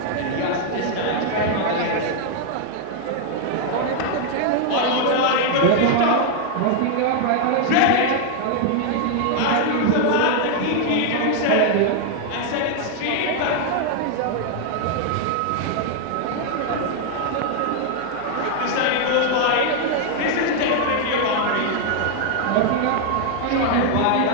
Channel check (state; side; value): different; both; correlation 0.00